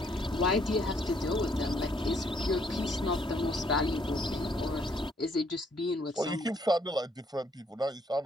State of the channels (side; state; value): both; normal; correlation 0.67